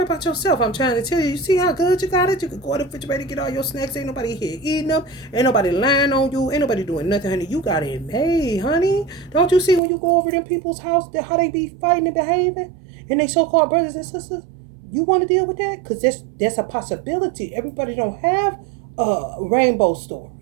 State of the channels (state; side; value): drops out; left; at 9.8 s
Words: about yourself. I'm trying to tell you, you see how good you got it? You can go to the refrigerator, get all your snacks. Ain't nobody here eating them. Ain't nobody lying on you. Ain't nobody doing nothing, honey. You got it made, honey. Don't you see when you go over them people's house, how they be fighting and behaving? And they so-called brothers and sisters? You want to deal with that? Because there's a possibility. Everybody don't have a rainbow story.